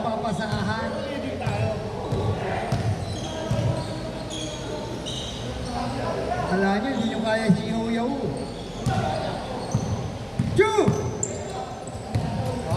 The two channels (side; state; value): both; identical; correlation 1.00